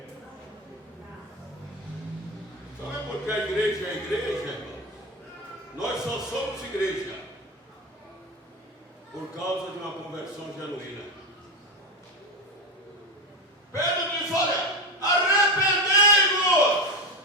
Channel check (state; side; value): normal; both; correlation 0.17